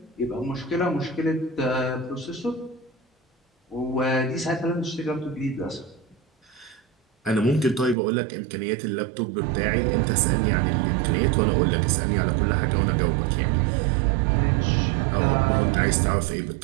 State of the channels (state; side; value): drops out; left; at 8.0 s